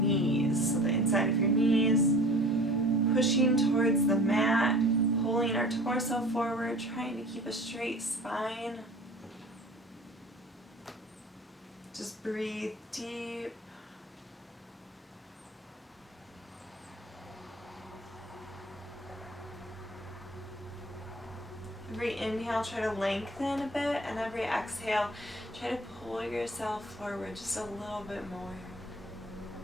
So the inside of your knees, pushing towards the mat, pulling our torso forward, trying to keep a straight spine. Just breathe deep. Every inhale, try to lengthen a bit, and every exhale, try to pull yourself forward just a little bit more.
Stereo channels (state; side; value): normal; both; correlation 0.44